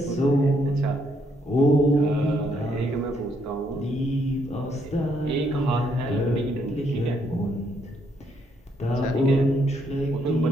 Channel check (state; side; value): normal; both; correlation 0.73